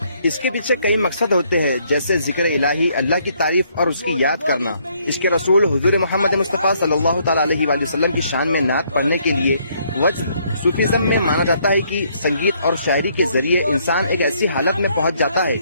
اس کے پیچھے کئی مقصد ہوتے ہیں، جیسے ذکر الہی، اللہ کی تعریف اور اس کی یاد کرنا۔ اس کے رسول حضور محمد مصطفیٰ صلی اللہ تعالیٰ علیہ وآلہ وسلم کی شان میں نعت پڑھنے کے لیے وجد۔ صوفیزم میں مانا جاتا ہے کہ سنگیت اور شاعری کے ذریعے انسان ایک ایسی حالت میں پہنچ جاتا ہے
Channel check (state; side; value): inverted; both; correlation -0.69